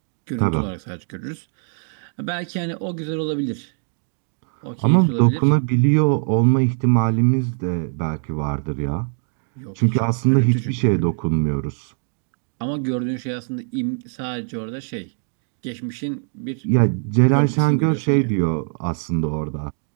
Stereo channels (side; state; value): left; silent; 64 dB below the other